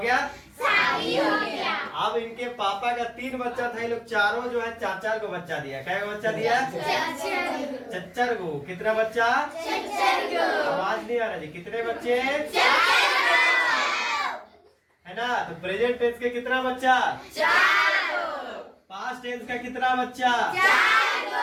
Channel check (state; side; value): identical; both; correlation 1.00